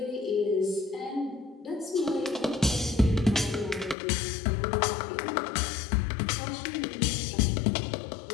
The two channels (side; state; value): right; drops out; at 4.0 s